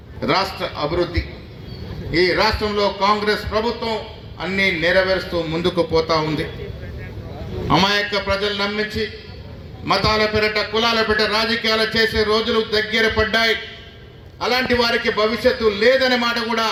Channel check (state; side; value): identical; both; correlation 1.00